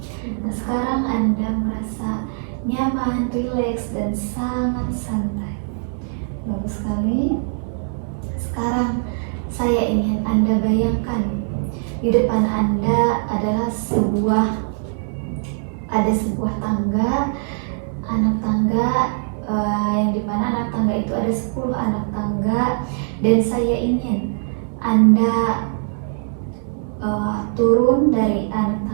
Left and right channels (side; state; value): left; silent; digital silence